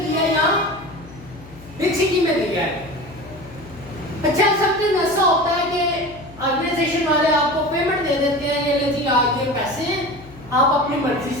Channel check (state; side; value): noise; left; hum, 20 dB below the sound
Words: है या बिग सिटी में दिया है। अच्छा, समथिंग ऐसा होता है कि ऑर्गेनाइजेशन वाले आपको पेमेंट दे देते हैं, ये ले जी आज ये पैसे हैं, आप अपनी मर्जी